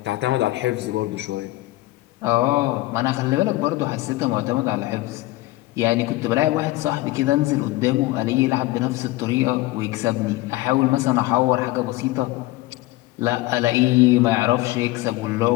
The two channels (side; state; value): right; quieter; 18.3 dB